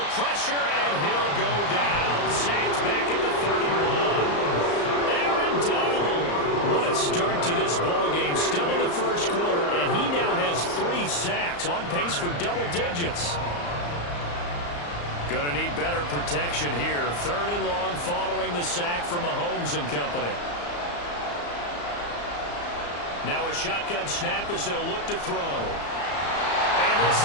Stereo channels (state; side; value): late; right; 34 ms